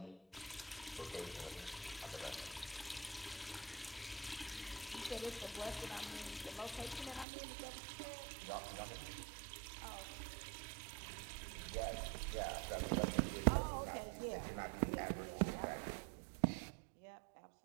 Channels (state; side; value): drops out; left; at 7.2 s